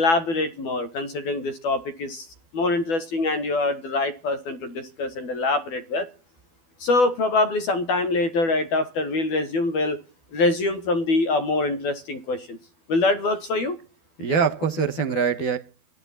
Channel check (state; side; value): late; right; 12 ms